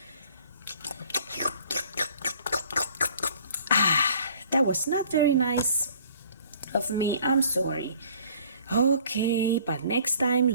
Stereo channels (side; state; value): both; inverted; correlation -0.54